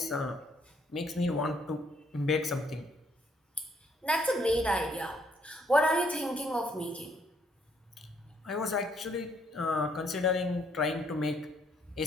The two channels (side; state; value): both; normal; correlation 0.69